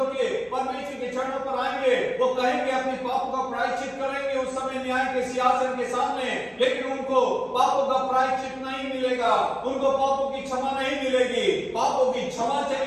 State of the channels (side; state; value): both; identical; correlation 1.00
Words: के परमेश्वर के चरणों पर आएंगे, वो कहेंगे अपने पापों का प्रायश्चित करेंगे उस समय न्याय के सिंहासन के सामने। लेकिन उनको पापों का प्रायश्चित नहीं मिलेगा, उनको पापों की क्षमा नहीं मिलेगी। पापों की क्षमा